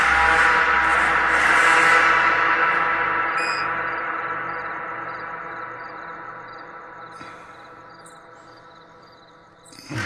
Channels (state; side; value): identical; both; correlation 1.00